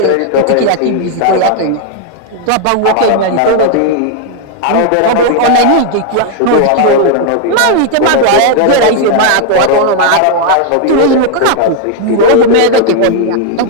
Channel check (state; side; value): different; both; correlation 0.00